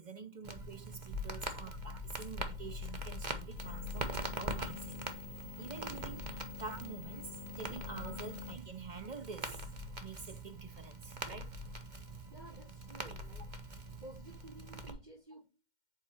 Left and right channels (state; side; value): late; left; 2.1 ms